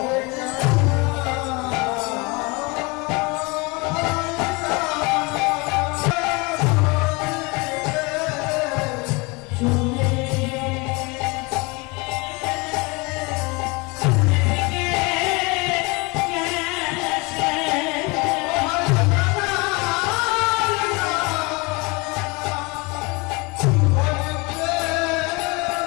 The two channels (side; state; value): right; quieter; 26.9 dB